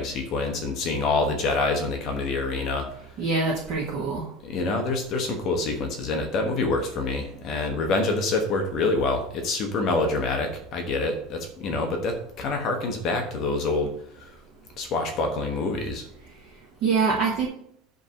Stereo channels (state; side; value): normal; both; correlation 0.30